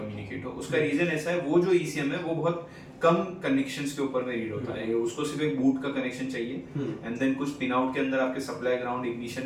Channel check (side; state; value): both; identical; correlation 1.00